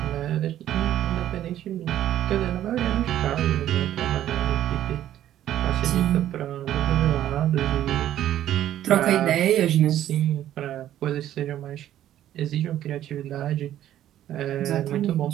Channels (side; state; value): left; quieter; 12.1 dB